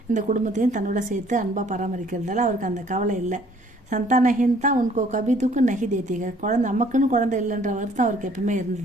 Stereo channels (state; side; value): normal; both; correlation 0.59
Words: இந்த குடும்பத்தையும் தன்னோட சேர்த்து அன்பாக பராமரிக்கிறதால அவருக்கு அந்த கவலை இல்லை. சந்தானஹீன் தான் உன்கோ கபி துக்கு நகி தேத்திக. குழந்தை நமக்குன்னு குழந்தை இல்லைன்ற வருத்தம் அவருக்கு எப்பவுமே